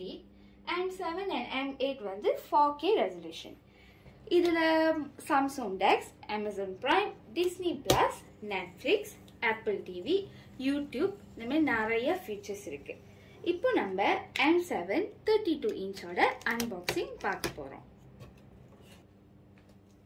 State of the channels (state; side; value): identical; both; correlation 1.00